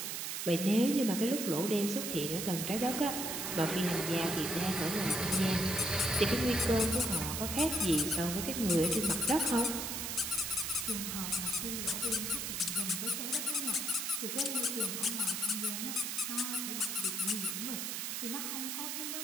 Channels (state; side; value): noise; right; hiss, 3 dB below the sound